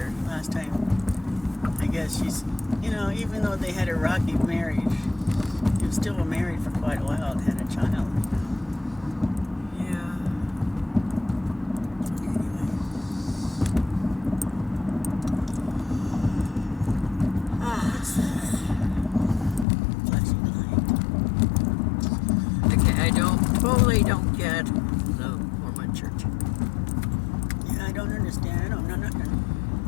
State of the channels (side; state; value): right; drops out; at 19.7 s